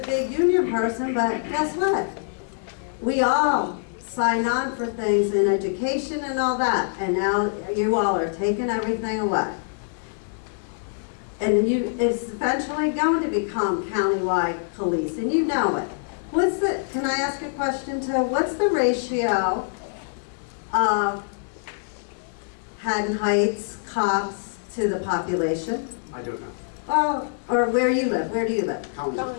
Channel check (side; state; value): right; silent; 62 dB below the other